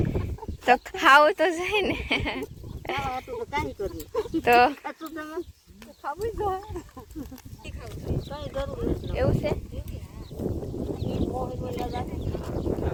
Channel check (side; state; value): both; identical; correlation 1.00